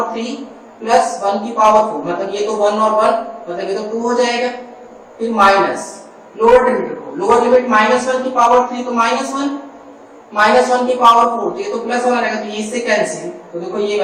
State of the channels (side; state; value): both; identical; correlation 1.00